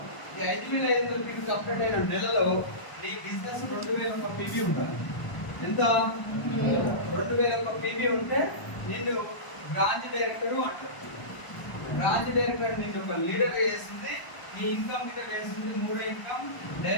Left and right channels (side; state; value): right; late; 1.0 ms